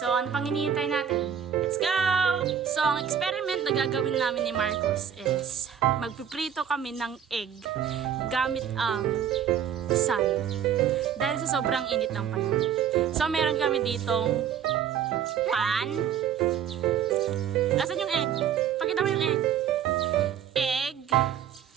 ano pang hinihintay natin? Let's go! So ang experiment na gagawin namin ni Marcus is magpiprito kami ng egg gamit ang sun. Dahil sa sobrang init ng panahon. So meron kami ditong pan. Asan yung egg? Pakita mo yung egg. Egg,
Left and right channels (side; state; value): left; quieter; 8.7 dB